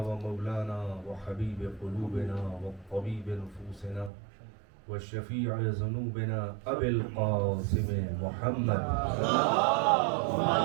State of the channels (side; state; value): left; drops out; at 4.1 s